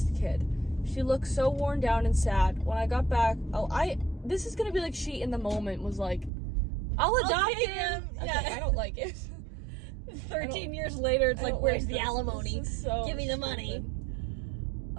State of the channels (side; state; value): left; drops out; at 6.3 s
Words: kid. She looked so worn down and sad. When I got back, this is gonna be like she in the moment was like, I'll adopt take him. him. Okay, Yeah. I don't like it. 13 years later, it's I like, don't where's like the this. alimony? This is so Give me the money. stupid.